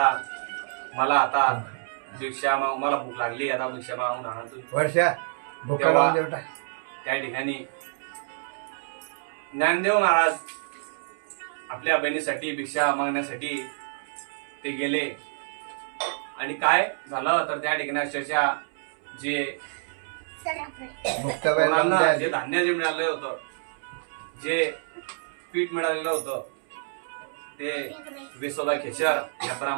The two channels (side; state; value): left; silent; 60 dB below the other